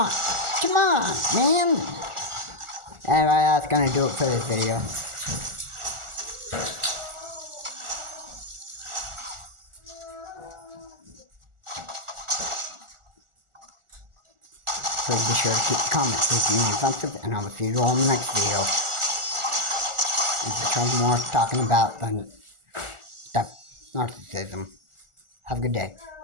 Come on, man. Anyway, that's gonna do it for this video. Please be sure to keep the comments if you want offensive, and I will see you all in the next video. There's more talking about than stuff, narcissism. Have a good day.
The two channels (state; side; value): late; left; 1.4 ms